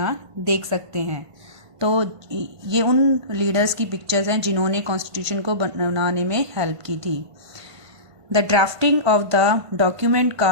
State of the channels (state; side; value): late; left; 1.5 ms